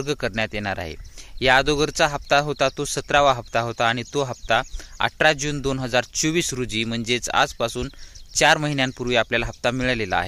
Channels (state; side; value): identical; both; correlation 1.00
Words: करण्यात येणार आहे। या अगोदरचा हप्ता होता तो 17वा हप्ता होता आणि तो हप्ता 18 जून 2024 रोजी म्हणजेच आजपासून 4 महिन्यांपूर्वी आपल्याला हप्ता मिळालेला